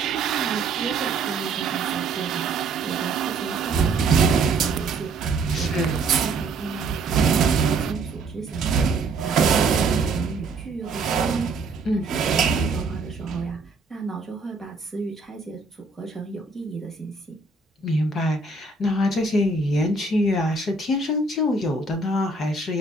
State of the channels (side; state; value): left; quieter; 3.7 dB